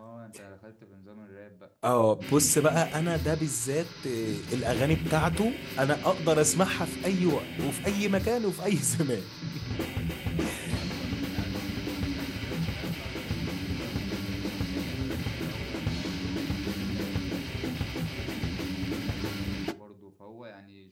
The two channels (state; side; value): identical; both; correlation 1.00